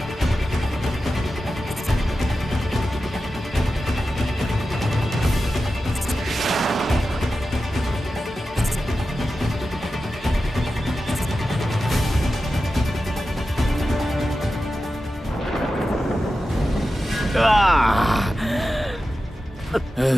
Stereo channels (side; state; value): both; normal; correlation 0.92